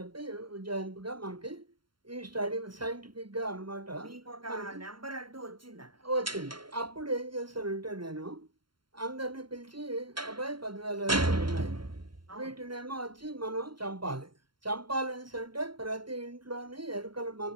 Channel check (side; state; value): left; late; 0.73 ms